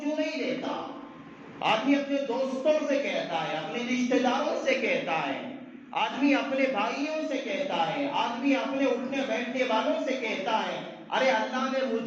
نہیں دیتا۔ آدمی اپنے دوستوں سے کہتا ہے، اپنے رشتہ داروں سے کہتا ہے، آدمی اپنے بھائیوں سے کہتا ہے، آدمی اپنے اٹھنے بیٹھنے والوں سے کہتا ہے ارے اللہ نے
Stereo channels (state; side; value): identical; both; correlation 1.00